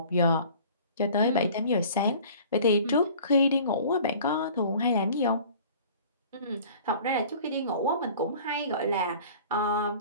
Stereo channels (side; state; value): both; inverted; correlation -0.47